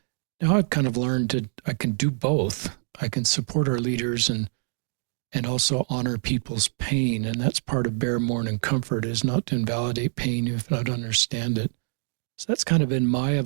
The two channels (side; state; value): left; silent; 56 dB below the other